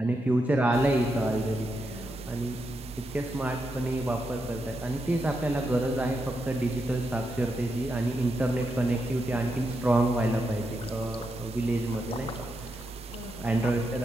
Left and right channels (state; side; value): normal; both; correlation 0.84